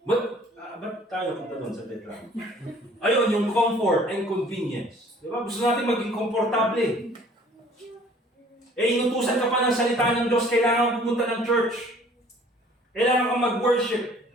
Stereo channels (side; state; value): both; normal; correlation 0.54